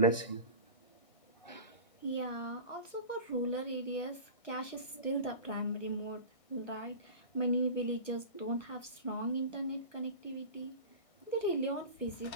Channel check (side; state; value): right; late; 1.0 ms